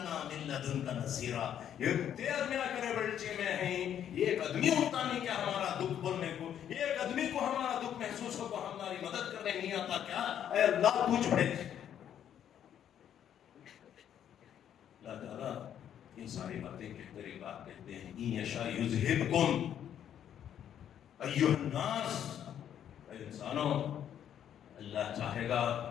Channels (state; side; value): quieter; right; 9.8 dB